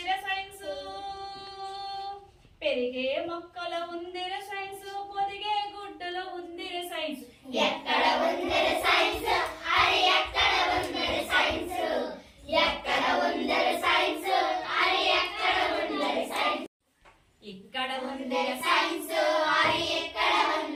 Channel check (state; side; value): identical; both; correlation 1.00